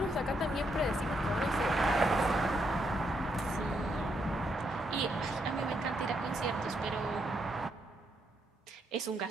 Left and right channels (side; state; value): both; normal; correlation 0.78